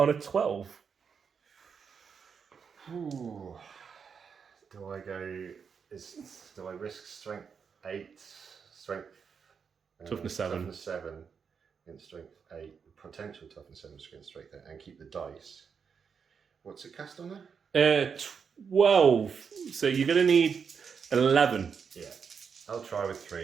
a 12. Ooh. Do I risk strength 8, strength toughness 7. Toughness 7 against strength 8, potential toughness 7 against strength 8, and keep the dice? What's it cast on there? 12. So you're going to need 11. Yeah. I'll try with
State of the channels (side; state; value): left; quieter; 6.3 dB